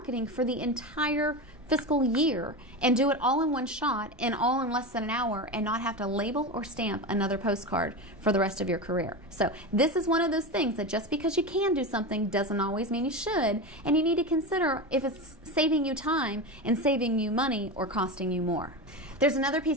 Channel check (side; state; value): both; normal; correlation 0.21